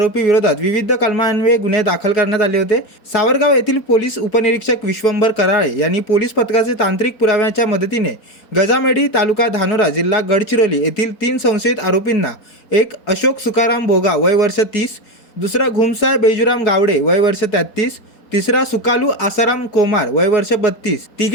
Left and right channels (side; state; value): right; late; 4.7 ms